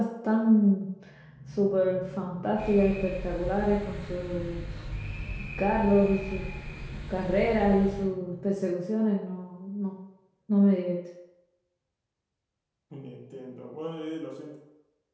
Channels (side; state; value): both; identical; correlation 1.00